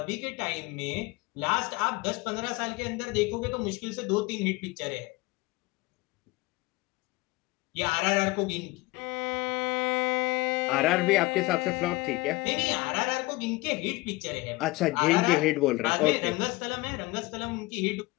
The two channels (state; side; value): quieter; right; 21.8 dB